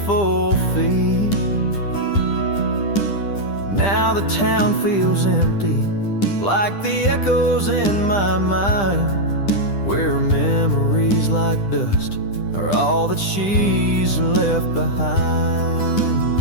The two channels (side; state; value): right; late; 10 ms